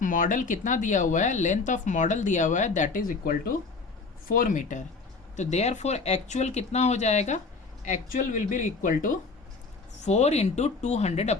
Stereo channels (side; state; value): right; quieter; 4.2 dB